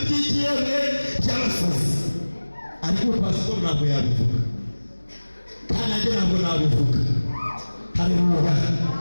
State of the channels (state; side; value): inverted; both; correlation -1.00